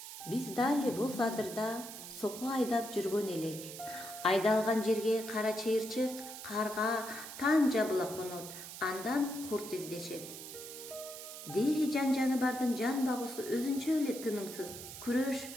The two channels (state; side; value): noise; right; hiss, 11 dB below the sound